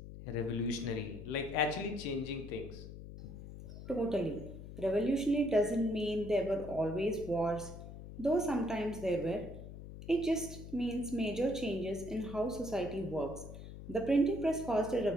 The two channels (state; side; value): noise; left; hum, 12 dB below the sound